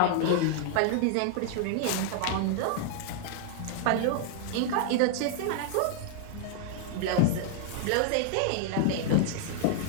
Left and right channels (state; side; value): different; both; correlation -0.01